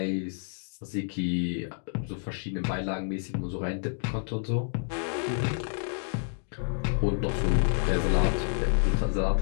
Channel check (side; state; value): right; silent; digital silence